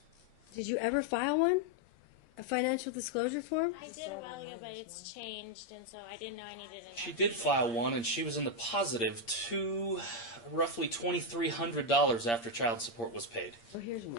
Did you ever file one? A financial disclosure form? I did a while ago, but it's changed, and so I didn't know I needed it. She did file one, and she was in the positive to roughly $2,300 after child support was paid. Oh, here's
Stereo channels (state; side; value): late; right; 8.7 ms